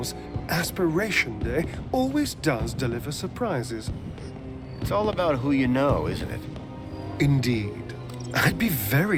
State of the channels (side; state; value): both; identical; correlation 1.00